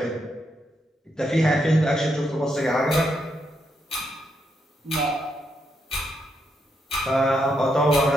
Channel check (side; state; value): both; normal; correlation 0.80